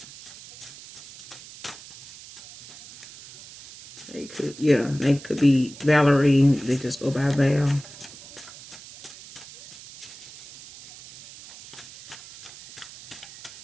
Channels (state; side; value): noise; right; hiss, 17 dB below the sound